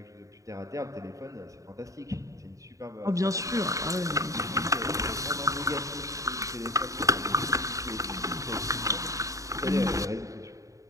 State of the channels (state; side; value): late; left; 0.16 ms